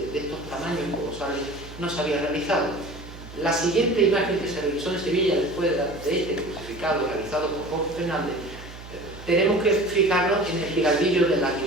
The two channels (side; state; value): right; noise; hum, 15 dB below the sound